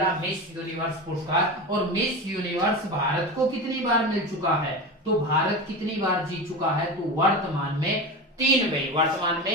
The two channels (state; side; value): normal; both; correlation 0.24